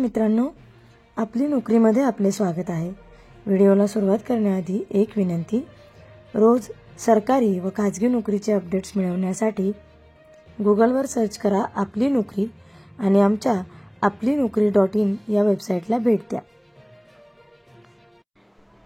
आपली नोकरीमध्ये आपले स्वागत आहे। व्हिडिओला सुरुवात करण्याआधी एक विनंती, रोज सरकारी व खाजगी नोकरीचे अपडेट्स मिळवण्यासाठी गुगलवर सर्च करा आपली नोकरी आणि आमच्या आपलीनोकरी.in या वेबसाईटला भेट द्या।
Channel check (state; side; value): identical; both; correlation 1.00